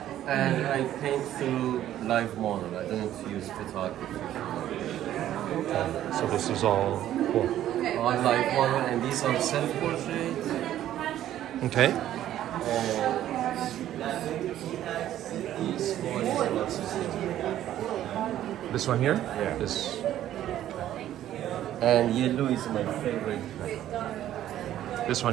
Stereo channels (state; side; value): quieter; left; 12.3 dB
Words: and I paint through live model. I don't use photography. So this is all cool. All live model, and these are self-portraits. Okay. These one is also This one here? Yeah. This. and yellow is my favorite. This one